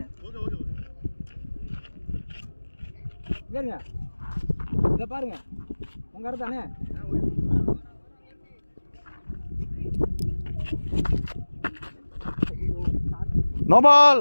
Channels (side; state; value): both; inverted; correlation -1.00